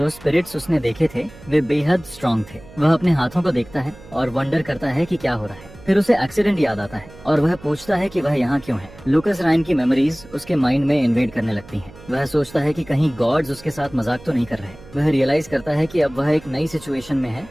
स्पिरिट्स उसने देखे थे वे बेहद स्ट्रांग थे। वह अपने हाथों को देखता है और वंडर करता है कि क्या हो रहा है। फिर उसे एक्सीडेंट याद आता है और वह पूछता है कि वह यहाँ क्यों है। लूकस रायन की मेमोरीज उसके माइंड में इन्वेड करने लगती हैं। वह सोचता है कि कहीं गॉड्स उसके साथ मजाक तो नहीं कर रहे। वह रियलाइज करता है कि अब वह एक नई सिचुएशन में है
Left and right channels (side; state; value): right; noise; hum, 20 dB below the sound